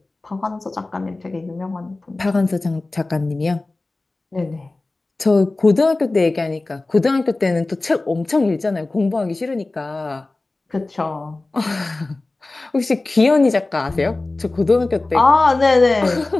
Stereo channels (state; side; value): quieter; right; 3.1 dB